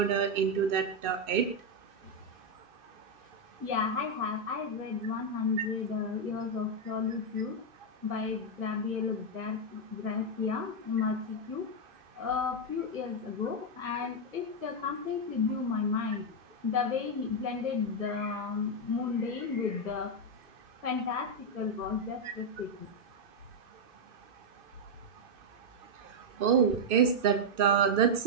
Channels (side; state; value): left; late; 2.6 ms